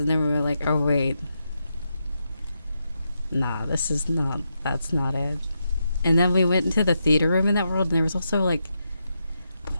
and then we were like, oh wait, nah, that's not it. And then we went into the theater room in that world, and there was also like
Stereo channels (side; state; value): both; inverted; correlation -0.84